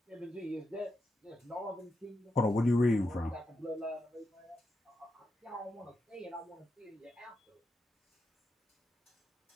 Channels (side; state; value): both; normal; correlation 0.86